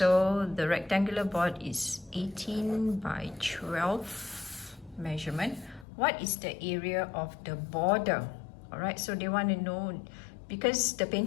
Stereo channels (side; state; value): right; drops out; at 5.9 s